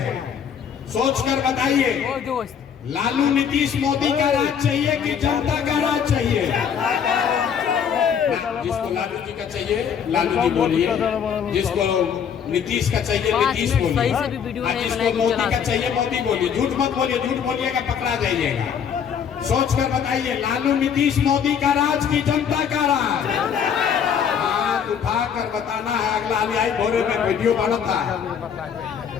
सोच कर बताइए, लालू नीतीश मोदी का राज चाहिए कि जनता का राज चाहिए? जिसको लालू जी का चाहिए लालू जी बोलिए, जिसको नीतीश का चाहिए नीतीश बोलिए, जिसको मोदी का चाहिए मोदी बोलिए। झूठ मत बोलिए, झूठ बोलिएगा पकड़ा जाइएगा। सोच कर बताइए, लालू नीतीश मोदी का राज की जनता का राज? हाथ उठाकर बताना है। अगला आई भोरे में वीडियो बना था,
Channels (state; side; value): quieter; right; 7.7 dB